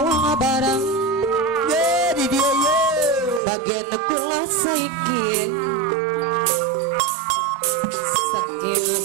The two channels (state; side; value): drops out; left; at 3.4 s